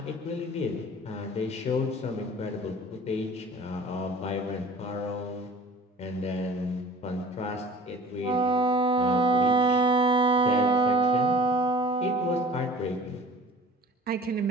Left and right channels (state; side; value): normal; both; correlation 0.44